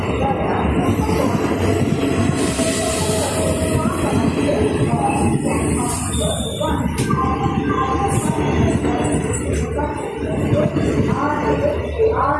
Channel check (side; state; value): both; identical; correlation 1.00